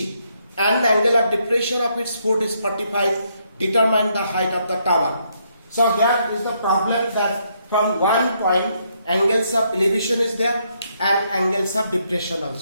and the angle of depression of its foot is 45. Determine the height of the tower. So here is the problem that from one point angles of elevation is there and angles of depression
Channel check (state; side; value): inverted; both; correlation -0.74